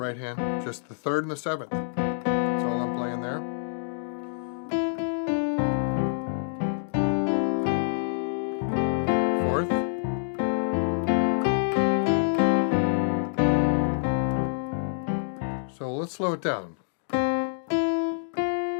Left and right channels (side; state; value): right; silent; digital silence